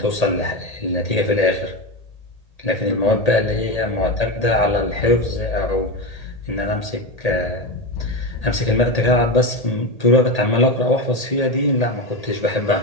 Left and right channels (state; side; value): late; right; 1.8 ms